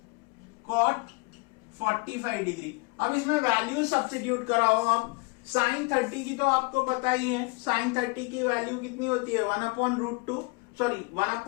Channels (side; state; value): right; quieter; 28.5 dB